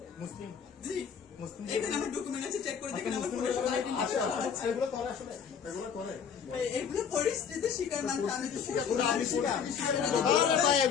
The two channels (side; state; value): right; quieter; 7.1 dB